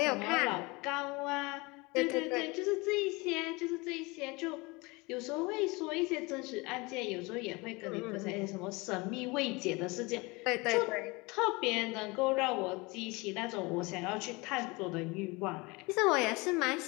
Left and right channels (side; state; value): right; quieter; 25.4 dB